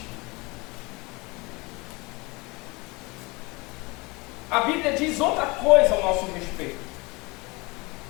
A Bíblia diz outra coisa ao nosso respeito.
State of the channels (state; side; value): quieter; right; 25.3 dB